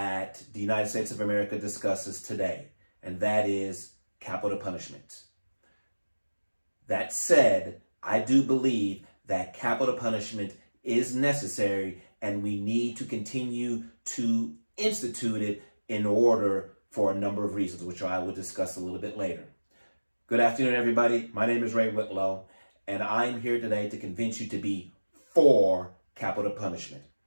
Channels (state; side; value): inverted; both; correlation -1.00